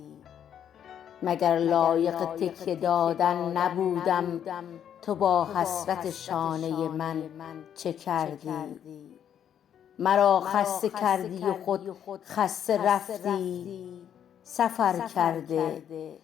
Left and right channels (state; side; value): quieter; right; 9.3 dB